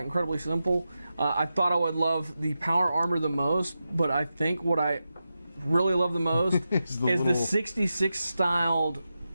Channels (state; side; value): inverted; both; correlation -0.90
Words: simple. I thought I would love the power armor the most, but I think what I really love the most is the 66 styled